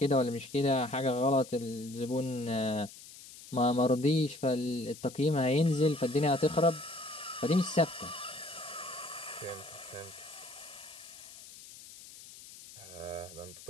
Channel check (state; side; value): noise; left; hiss, 17 dB below the sound